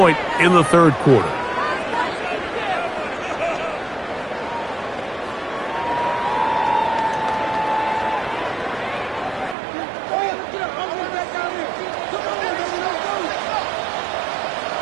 in the 3rd quarter.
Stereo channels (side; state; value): left; drops out; at 9.6 s